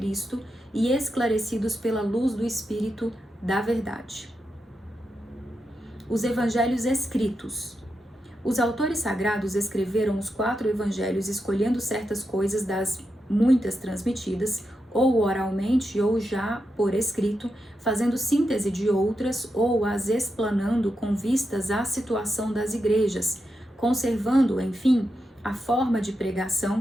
e esclarecidos pela luz do Espírito da verdade. Os evangelhos escritos. Os autores sagrados escreveram os 4 evangelhos escolhendo certas coisas das muitas transmitidas, ou oralmente ou já por escrito, fazendo síntese de outras ou as explanando com vistas à situação das igrejas, conservando, enfim, a forma de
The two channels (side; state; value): both; normal; correlation 0.86